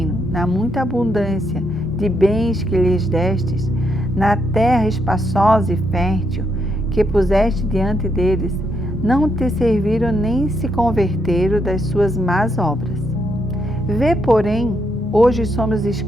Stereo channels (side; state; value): both; normal; correlation 0.78